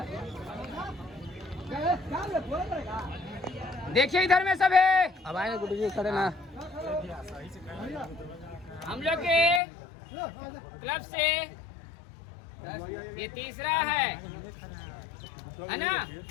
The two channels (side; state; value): right; drops out; at 9.6 s